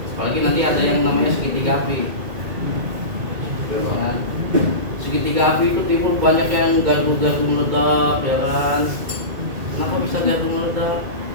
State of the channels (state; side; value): late; left; 2.2 ms